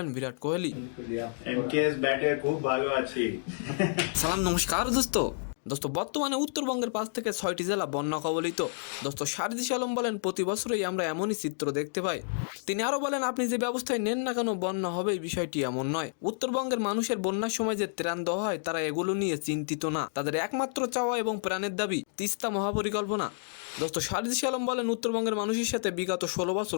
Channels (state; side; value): silent; right; digital silence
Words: বিরাট কোহলি। এমকেএস ব্যাটে খুব ভালো আছি। সালাম, নমস্কার দোস্ত। বর্তমানে উত্তরবঙ্গের 5 থেকে 6টি জেলা বন্যা কবলিত। দোস্ত, সারজিস আলম বলেন প্রতি বছরই আমরা এমনই চিত্র দেখতে পাই। তিনি আরো বলেন, আপনি যে ব্যবস্থায় নেন না কেন বন্যা হবে এই বিষয়টি এমন নয়। উত্তরবঙ্গের মানুষের বন্যার সময় যে ত্রাণ দেওয়া হয় তারা এগুলো নিয়ে চিন্তিত না। তাদের একমাত্র চাওয়া এবং প্রাণের দাবি তিস্তা মহাপরিকল্পনা। দোস্ত, সারজিস আলম বলেন উত্তরবঙ্গের মানুষের সাথে বিগত 16 বছর